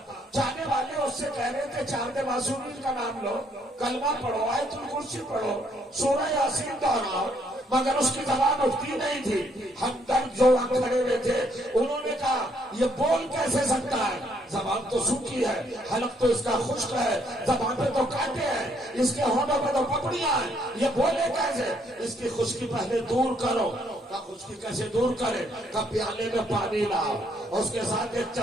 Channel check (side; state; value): both; normal; correlation 0.70